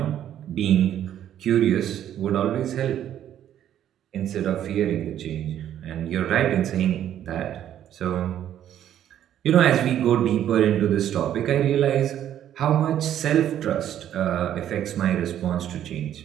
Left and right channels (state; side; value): quieter; left; 10.8 dB